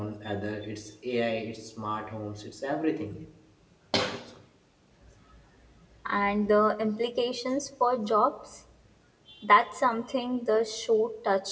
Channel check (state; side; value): identical; both; correlation 1.00